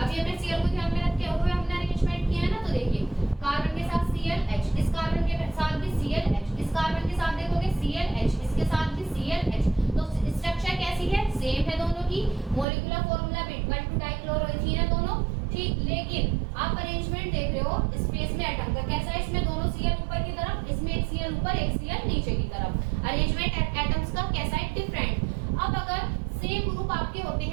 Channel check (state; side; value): drops out; left; at 12.7 s